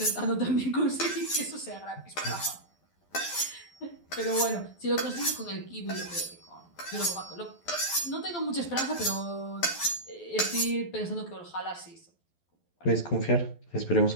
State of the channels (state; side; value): late; right; 12 ms